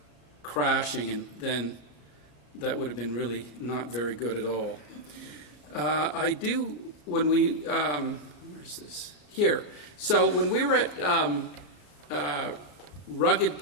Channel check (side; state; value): right; late; 34 ms